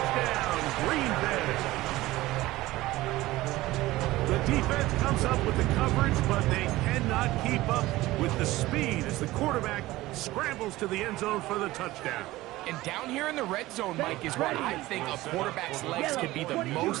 Green Bay. The defense comes up with the coverage, but they cannot keep up with the speed as the quarterback scrambles to the end zone for the touchdown. And down here in the red zone, Mike, is where I think a quarterback's legs can be the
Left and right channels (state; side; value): quieter; left; 17.8 dB